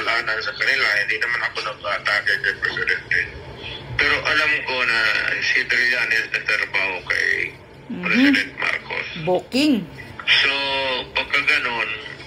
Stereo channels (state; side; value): identical; both; correlation 1.00